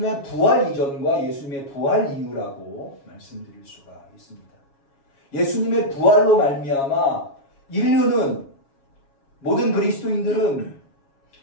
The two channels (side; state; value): right; late; 7.2 ms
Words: 부활 이전과 예수님의 부활 이후라고 말씀드릴 수가 있습니다. 예수님의 부활로 말미암아 인류는, 모든 그리스도인들은,